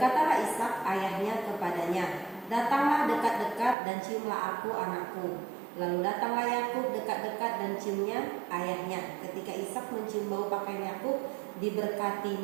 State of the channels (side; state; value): left; drops out; at 3.8 s